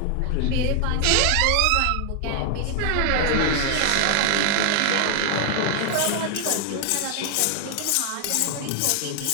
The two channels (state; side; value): different; both; correlation 0.00